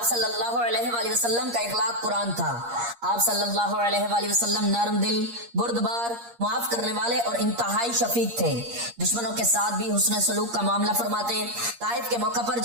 صلی اللہ علیہ وآلہ وسلم کا اخلاق قرآن تھا۔ آپ صلی اللہ علیہ وآلہ وسلم نرم دل، بردبار، معاف کرنے والے اور انتہائی شفیق تھے۔ دشمنوں کے ساتھ بھی حسن سلوک کا معاملہ فرماتے۔ طائف کے موقع پر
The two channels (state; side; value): late; left; 8.5 ms